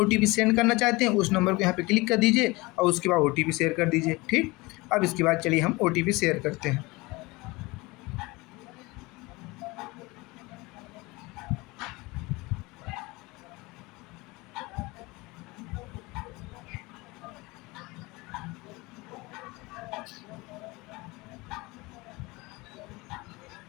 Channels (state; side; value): quieter; right; 23.1 dB